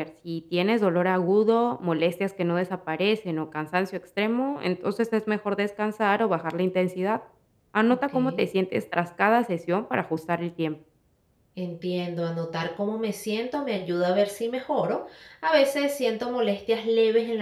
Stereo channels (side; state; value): both; identical; correlation 1.00